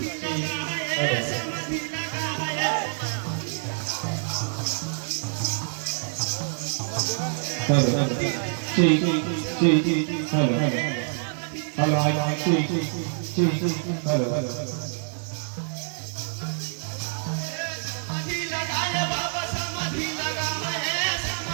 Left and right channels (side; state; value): left; silent; digital silence